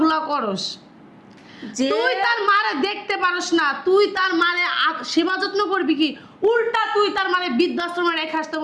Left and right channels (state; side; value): identical; both; correlation 1.00